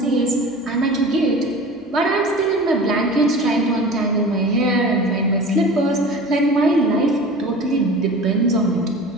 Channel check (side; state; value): both; normal; correlation 0.37